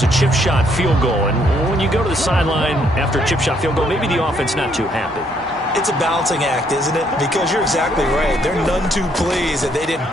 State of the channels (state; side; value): normal; both; correlation 0.69